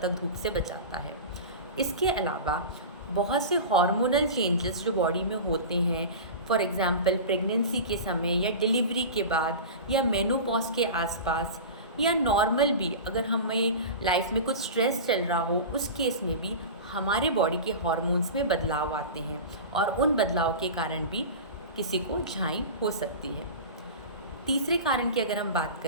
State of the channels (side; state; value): both; inverted; correlation -0.30